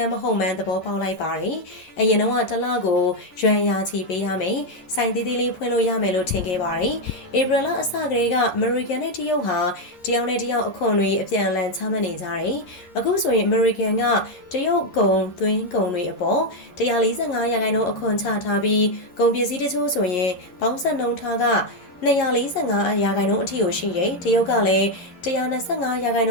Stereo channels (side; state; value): right; late; 11 ms